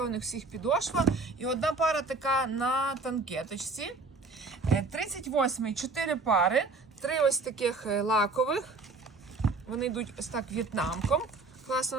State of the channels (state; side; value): quieter; left; 3.7 dB